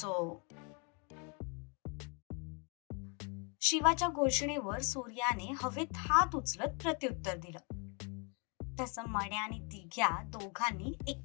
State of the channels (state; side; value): quieter; right; 33.0 dB